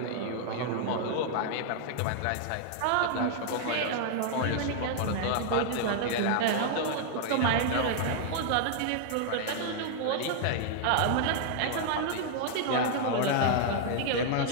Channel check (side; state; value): both; different; correlation 0.00